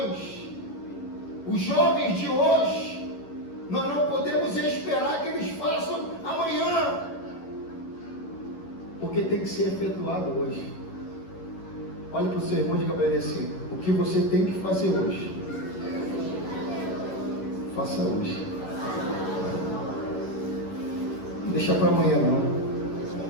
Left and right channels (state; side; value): late; right; 11 ms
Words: Os jovens de hoje, nós não podemos esperar que eles façam amanhã. Porque tem que ser efetuado hoje. Olha para o seu irmão e diga para ele assim: o que você tem que fazer hoje, faça hoje. Não deixa para amanhã não.